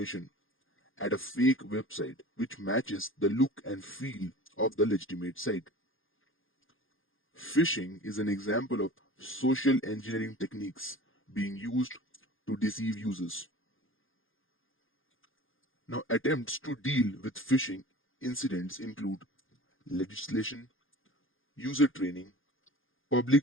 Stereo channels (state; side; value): late; right; 0.59 ms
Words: at a fake website which matches the look and feel of the legitimate site. Phishing is an example of social engineering techniques being used to deceive users. Now, attempts to deal with phishing incidents include legislation, user training,